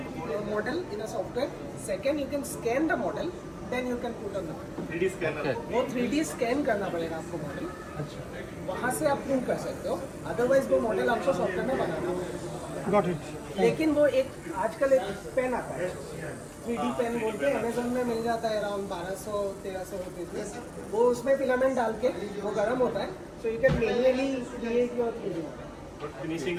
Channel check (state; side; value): identical; both; correlation 1.00